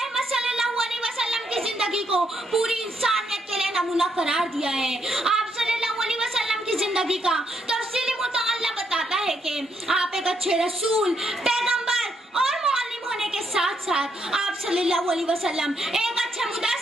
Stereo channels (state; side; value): normal; both; correlation 0.76